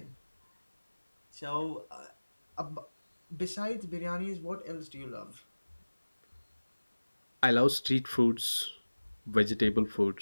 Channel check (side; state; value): both; inverted; correlation -1.00